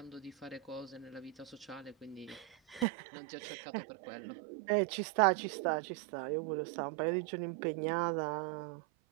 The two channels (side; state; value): left; drops out; at 2.9 s